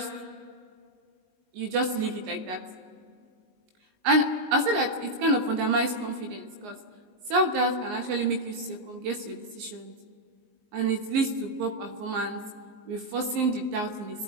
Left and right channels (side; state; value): left; late; 19 ms